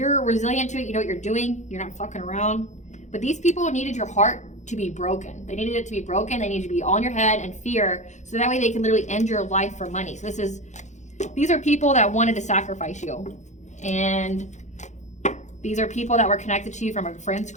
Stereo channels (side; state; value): right; late; 0.34 ms